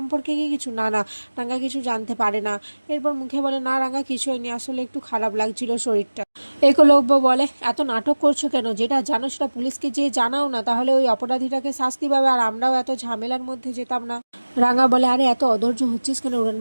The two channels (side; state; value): both; inverted; correlation -1.00